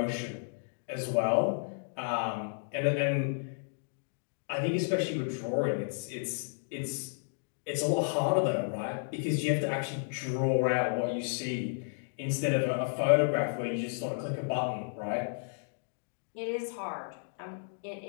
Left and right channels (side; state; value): right; silent; digital silence